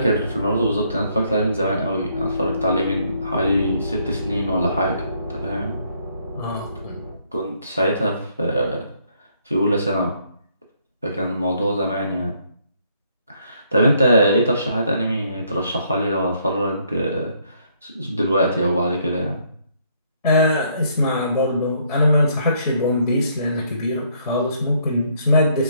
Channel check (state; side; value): inverted; both; correlation -0.69